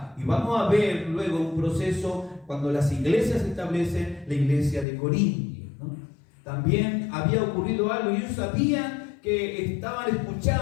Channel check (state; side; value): drops out; right; at 4.9 s